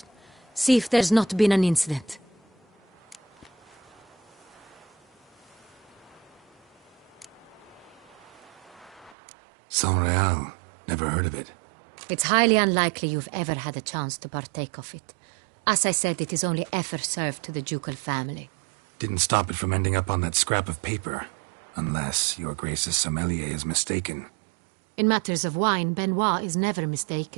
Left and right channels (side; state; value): left; drops out; at 9.2 s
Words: see if there's not been an incident. Saint Real. Never heard of it. It's highly unlikely you've ever had a chance to partake of it. As I said, it is only ever served to the ducal family. Didn't stop it from ending up on that scrap of paper. Unless your Grace's sommelier is mistaken. In matters of wine, Benoit is never